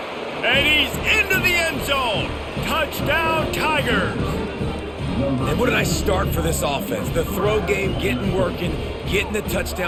and he's into the end zone. Touchdown, Tigers. And what a nice start for this offense. The throw game getting working, getting the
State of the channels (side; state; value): both; identical; correlation 1.00